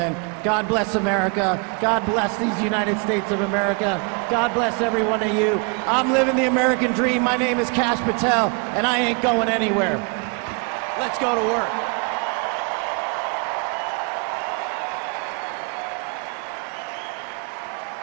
God bless America. God bless these United States of America. God bless every one of you. I'm living the American dream. My name is Kash Patel, and I ain't going anywhere. Let's go to work.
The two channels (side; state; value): left; quieter; 34.7 dB